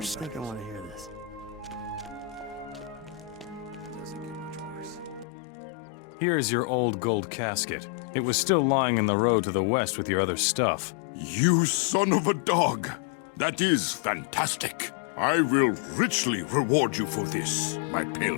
think I want to hear this. Here is your old gold casket. It was still lying in the road to the west with your other stuff. You son of a dog! That is fantastic. I will richly reward you for this, my pale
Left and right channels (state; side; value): drops out; right; at 5.2 s